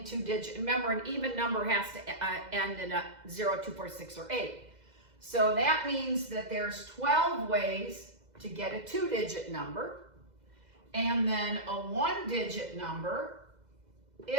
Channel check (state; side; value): late; left; 2.0 ms